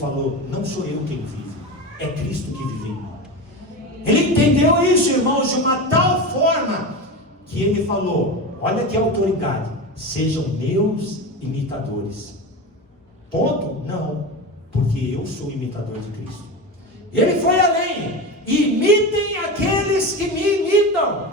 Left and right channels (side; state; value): both; normal; correlation 0.24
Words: não sou eu quem vive, é Cristo que vive em mim. Ele entendeu isso, irmãos, de uma tal forma, que ele falou, olha que autoridade, sejam meus imitadores. Ponto? Não, porque eu sou imitador de Cristo. Ele foi além, imitem aqueles que me imitam.